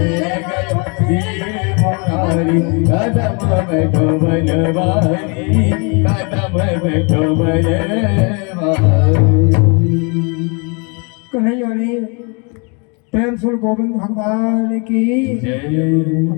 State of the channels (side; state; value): right; quieter; 33.4 dB